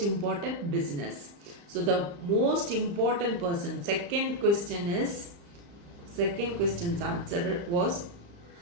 important business. So the most important person. Second question's answer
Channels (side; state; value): left; late; 35 ms